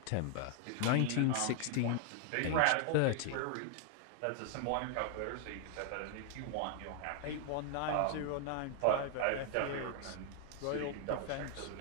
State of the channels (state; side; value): different; both; correlation 0.00